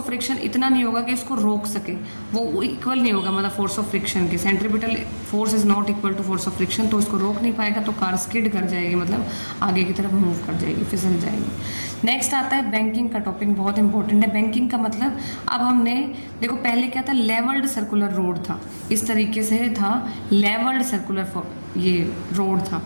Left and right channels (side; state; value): both; inverted; correlation -1.00